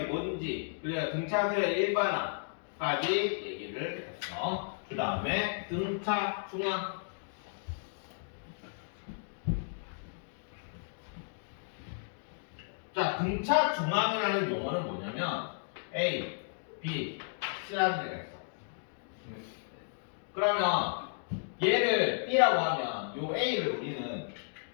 뭔지, 그래야 등차 서열 일반화까지 얘기를 했어. 그 다음에 등차 중앙. 자, 등차 중앙이라는 용어는 뭐냐면 A, B, C라는 데가 있어. 그러면 얘를 B라고 하면 요 A를 우리는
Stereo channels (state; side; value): silent; right; digital silence